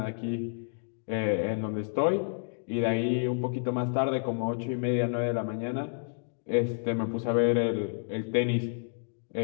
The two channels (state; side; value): silent; right; digital silence